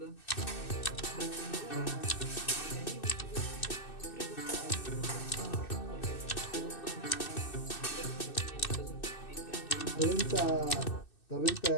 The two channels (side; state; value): right; late; 2.6 ms